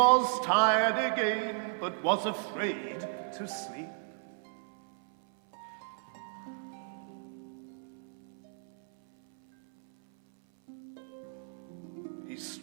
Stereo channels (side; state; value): left; silent; 55 dB below the other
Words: tired again, but was afraid to sleep. He